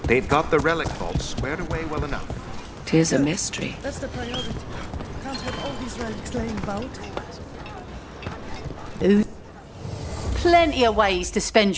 They've got the relic vault squared away well enough. 'Tis a mystery. That's the priority. Can't have all these relics laying about. Plenty of ways to spend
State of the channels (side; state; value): both; identical; correlation 1.00